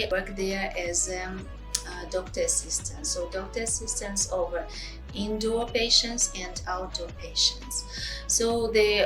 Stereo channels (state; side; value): identical; both; correlation 1.00